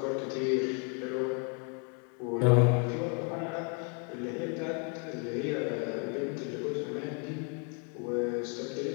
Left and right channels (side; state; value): right; quieter; 35.3 dB